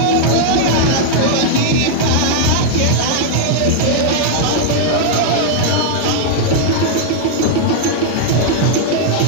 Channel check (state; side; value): different; both; correlation -0.01